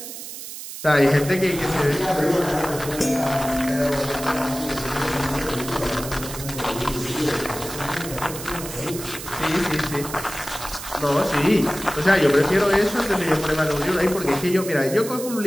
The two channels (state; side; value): noise; right; hiss, 10 dB below the sound